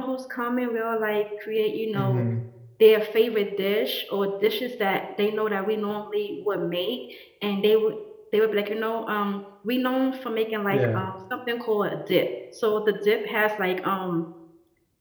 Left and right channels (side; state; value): both; identical; correlation 1.00